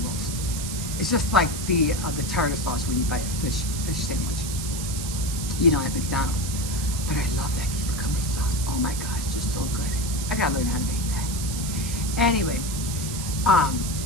most. It's just like the tartar sauce when you buy a fish sandwich, at McDonald's. But I love that cucumber sauce. Oh my God, it's just so good. I gotta learn how to make that. Anyway,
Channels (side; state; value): right; noise; hiss, 7 dB below the sound